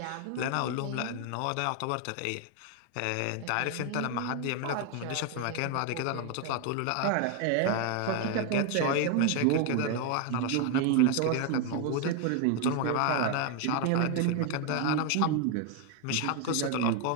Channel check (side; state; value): both; different; correlation 0.01